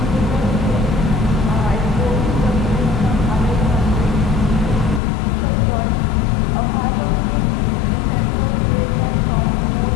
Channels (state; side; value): drops out; right; at 5.0 s